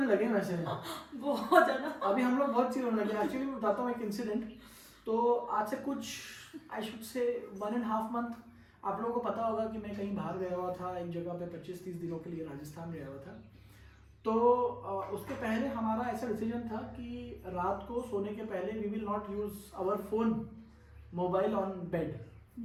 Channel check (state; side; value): identical; both; correlation 1.00